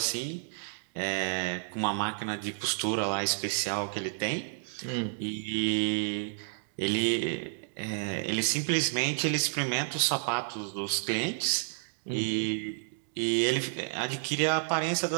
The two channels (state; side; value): silent; left; digital silence